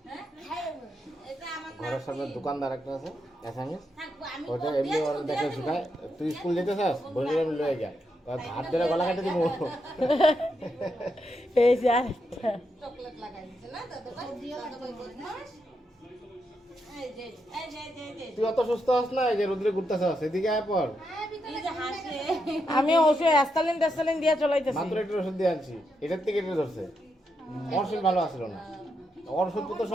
হ্যাঁ? খাই নেব। এটা আমার ঘরের সামনে দোকানদার একটা আছে অ্যাসামিস, থাকবো আমি। ওটা এমনি ওর দেখে শুকায়। তুই স্কুল যেতে চাস, বলে আমি লয়ে যা, হাত ধরে গলা কেটে দিব। এই যে আরেকটা। চকলেট লাগাই দিছে না দাদা ভাই? দাদা ভাই বদমাশ। এই যে এই যে এই যে তুই অত সুস্থ হস না, এই যে রোদ্রে ঘুরতেছাস, এদিকে আয় পর। এই যে হাসে। আমি ওষুধ অ্যাস্তালিন দিয়ে চলাইতেছি। মাত্র একটু ওষুধ দিয়ে আনছি, এটার থেকে এটা ধরছে। ওর শরীর ভালো আসলো না, ওর ওষুধ তো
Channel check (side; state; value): both; normal; correlation 0.82